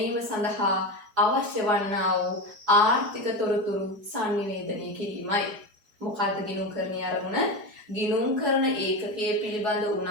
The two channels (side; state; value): left; late; 3.8 ms